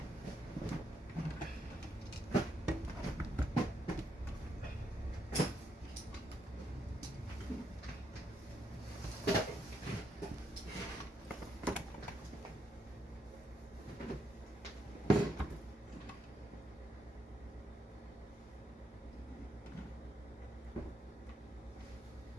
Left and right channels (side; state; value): both; normal; correlation 0.77